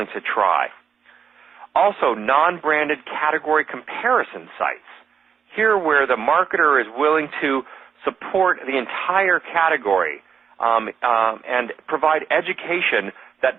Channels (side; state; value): left; quieter; 7.0 dB